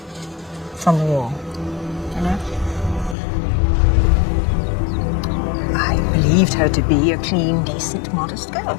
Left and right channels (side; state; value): right; drops out; at 3.2 s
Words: From the war. You know? I believed her to be a clean, decent, modest girl.